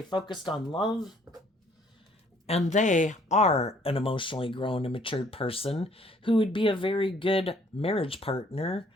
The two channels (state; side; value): normal; both; correlation 0.61